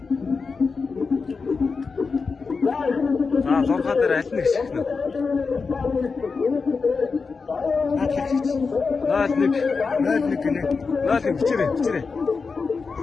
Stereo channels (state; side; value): quieter; right; 4.8 dB